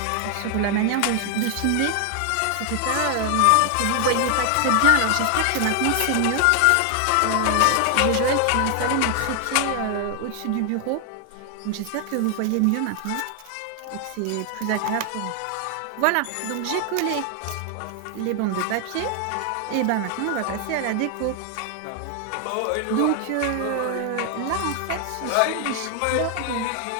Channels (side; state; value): both; different; correlation 0.00